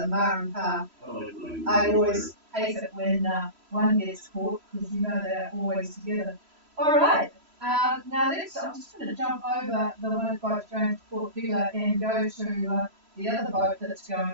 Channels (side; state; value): left; late; 3.0 ms